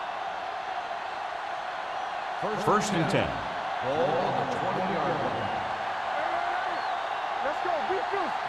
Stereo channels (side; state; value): both; identical; correlation 1.00